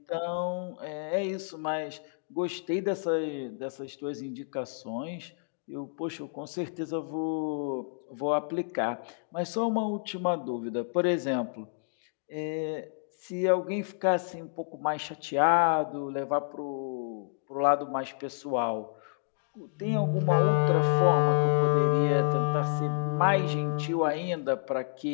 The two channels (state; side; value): silent; right; digital silence